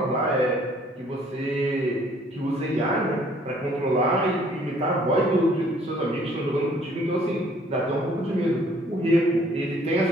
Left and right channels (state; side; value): normal; both; correlation 0.60